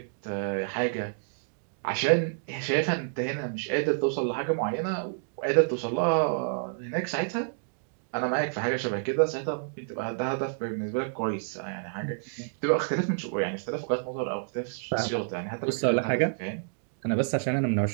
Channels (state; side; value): silent; left; digital silence